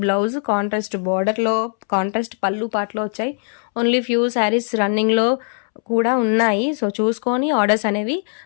బ్లౌజ్, కాంట్రాస్ట్ బార్డర్ లో, కాంట్రాస్ట్ పళ్ళు పాటలో వచ్చాయి. ఓన్లీ ఫ్యూ శారీస్ రన్నింగ్ లో కూడా ఉన్నాయి. సో చూసుకొని ఆర్డర్స్ అనేవి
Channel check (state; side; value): silent; right; 66 dB below the other